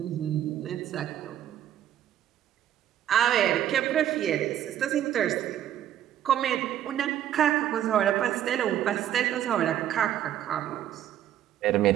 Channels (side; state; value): left; quieter; 11.2 dB